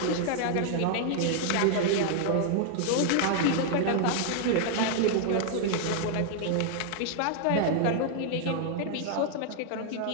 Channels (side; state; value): both; different; correlation -0.01